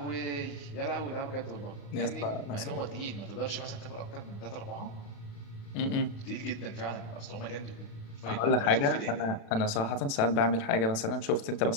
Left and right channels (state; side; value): late; right; 36 ms